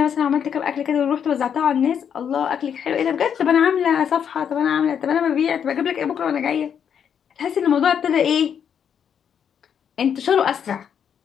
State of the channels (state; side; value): quieter; right; 8.1 dB